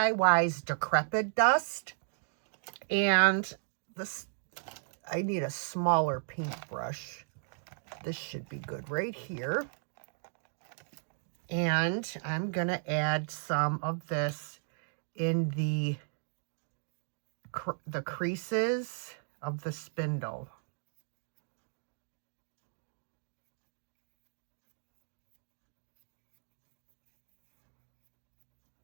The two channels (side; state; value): left; silent; digital silence